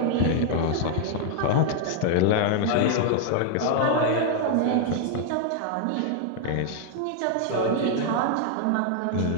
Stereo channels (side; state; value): both; different; correlation 0.00